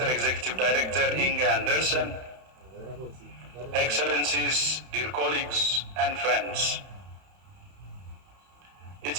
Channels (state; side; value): late; left; 31 ms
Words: Executive Director Inga Andersen, Excellencies, dear colleagues and friends.